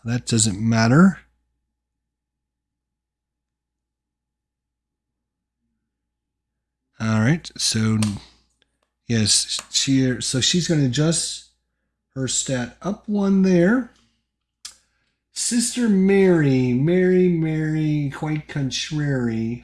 That doesn't matter. All right, so yes, she's going to adjust her stat up 1 there. Sister Mary, quite contrary.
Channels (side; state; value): both; identical; correlation 1.00